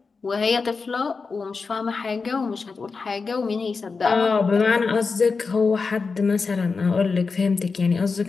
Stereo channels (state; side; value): quieter; right; 4.6 dB